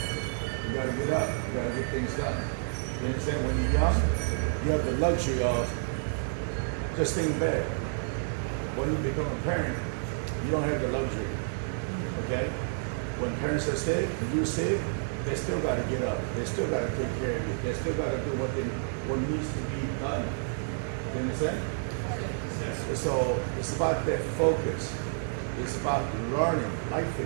you got to get up, you got to get things done. You understand? When you're young, you have the luxury of just staying in bed. When you become a parent, you don't have the luxury. Okay? When parents are sick, and you're sick, they still got to get up. They still got to take care of you. They still got to do what needs to be done. You understand? Yes. So it's about that focus. It's about learning, life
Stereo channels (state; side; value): silent; left; digital silence